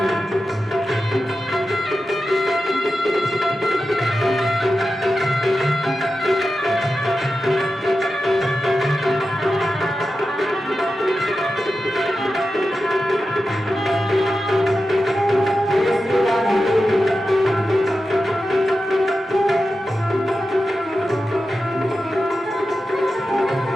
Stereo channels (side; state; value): both; normal; correlation 0.91